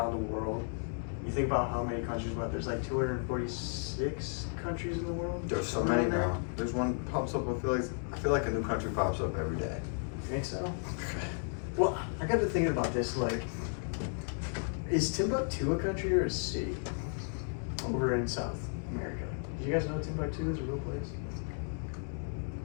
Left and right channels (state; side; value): silent; right; 55 dB below the other